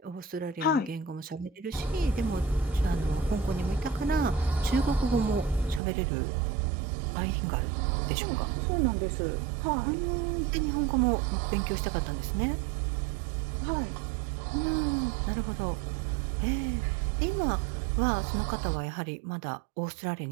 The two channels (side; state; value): left; drops out; at 5.8 s